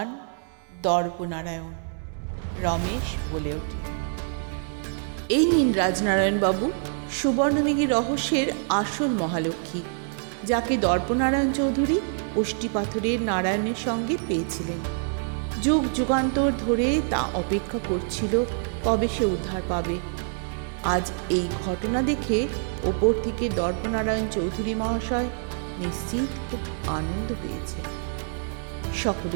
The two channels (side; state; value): left; silent; 61 dB below the other